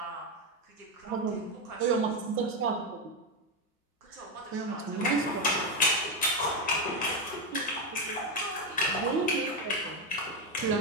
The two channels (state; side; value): normal; both; correlation 0.08